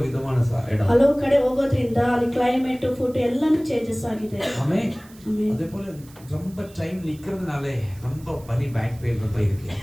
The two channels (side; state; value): right; noise; hiss, 24 dB below the sound